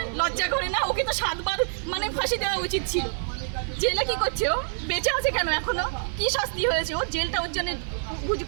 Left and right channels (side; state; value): left; silent; digital silence